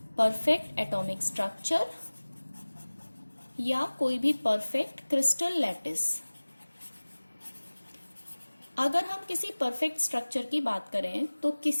परफेक्ट एटॉमिक स्ट्रक्चर या कोई भी परफेक्ट क्रिस्टल लैटिस। अगर हम किसी परफेक्ट स्ट्रक्चर की बात करें तो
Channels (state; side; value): inverted; both; correlation -1.00